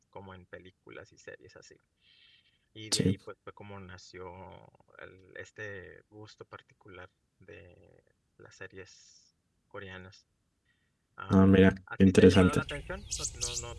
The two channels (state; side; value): identical; both; correlation 1.00